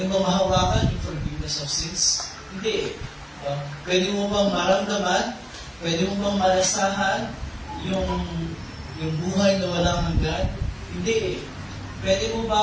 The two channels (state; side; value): identical; both; correlation 1.00